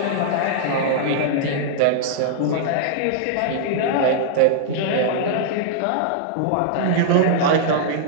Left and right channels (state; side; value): different; both; correlation -0.02